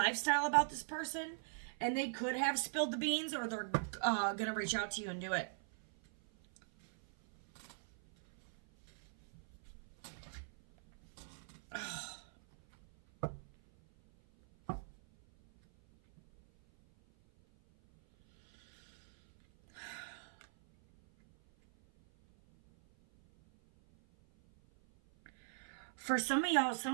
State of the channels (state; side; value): silent; left; 51 dB below the other